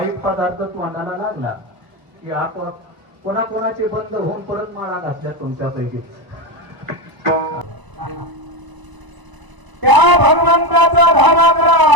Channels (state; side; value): late; left; 1.0 ms